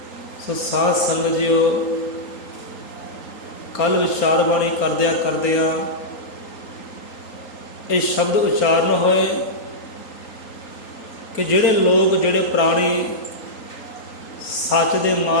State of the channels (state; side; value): late; right; 4.3 ms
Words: सो साध संगत जीओ, कल विचार बाणी करदिया ये शब्द उच्चारण होए कि जिहड़े लोग जिहड़े प्राणी सच दे